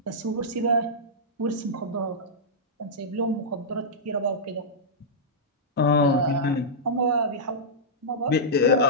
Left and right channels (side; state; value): both; normal; correlation -0.12